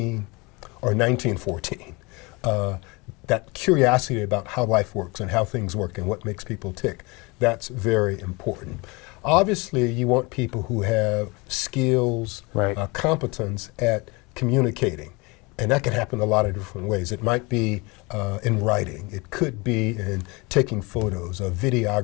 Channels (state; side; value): quieter; right; 26.3 dB